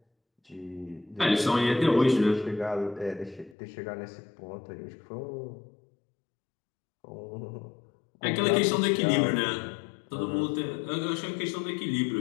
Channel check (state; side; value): drops out; right; at 3.6 s